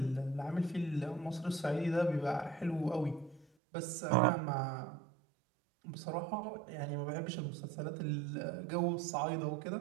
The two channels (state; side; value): drops out; left; at 3.5 s